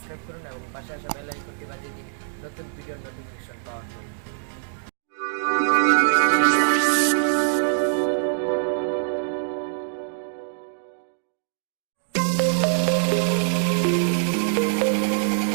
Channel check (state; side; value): silent; left; digital silence